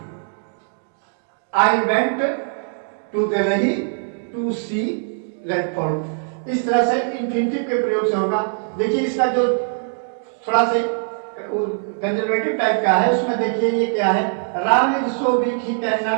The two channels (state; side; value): silent; left; digital silence